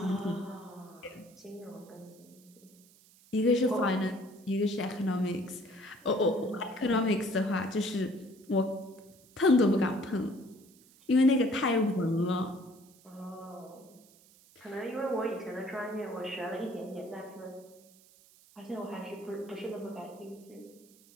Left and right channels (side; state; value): right; noise; hiss, 26 dB below the sound